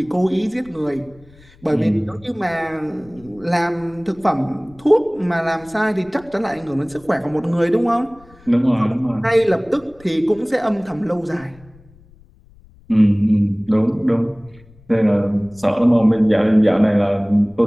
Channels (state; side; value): noise; left; rumble, 26 dB below the sound